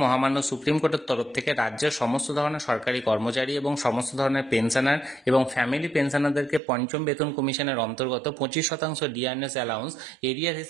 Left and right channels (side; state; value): left; drops out; at 6.6 s